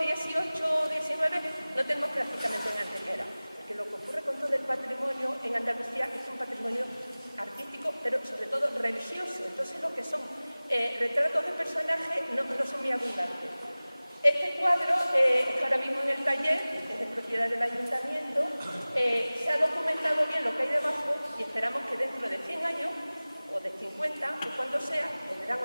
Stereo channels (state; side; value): inverted; both; correlation -0.99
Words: XVIII o XIX no tenemos prácticamente en Antequera, porque lo que ocurre con todo el patrimonio en Andalucía es un patrimonio artístico, pero sobre todo religioso. Entonces lo que son retratos de personajes no son muy abundantes. Este cuadro está ahora mismo en el taller, es de propiedad del ayuntamiento, se ha documentado bien lo que hay debajo y esperamos que dentro de 100 años o de 50, o cuando sea, vendrán